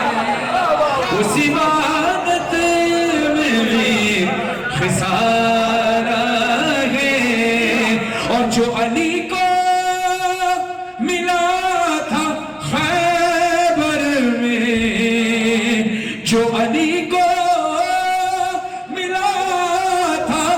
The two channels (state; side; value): identical; both; correlation 1.00